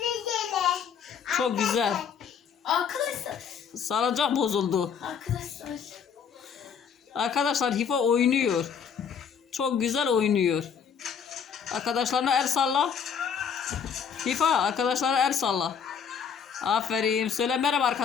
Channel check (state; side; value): quieter; right; 7.1 dB